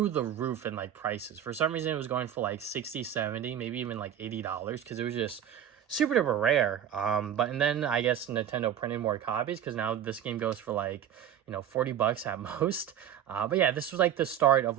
the roof in like prices. For some reason it was going for like 60, 70, maybe even like $80 because it was just super duper rare. And then I guess Nintendo printed more copies because now this game goes for like, you know, $40 at most. But yeah, this was like the start of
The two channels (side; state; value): left; quieter; 9.8 dB